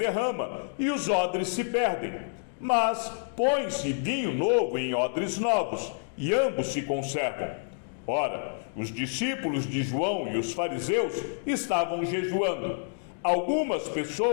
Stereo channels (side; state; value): right; silent; digital silence